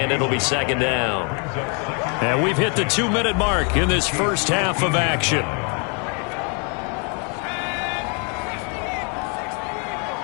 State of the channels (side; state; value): right; quieter; 37.3 dB